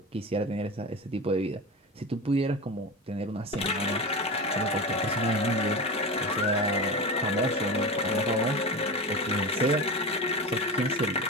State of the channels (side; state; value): both; normal; correlation 0.25